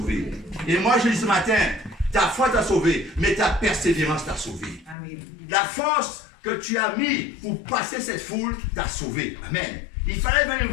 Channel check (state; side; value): drops out; right; at 5.0 s